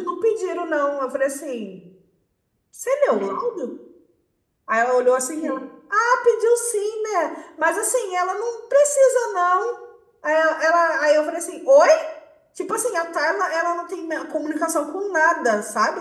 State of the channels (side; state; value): both; identical; correlation 1.00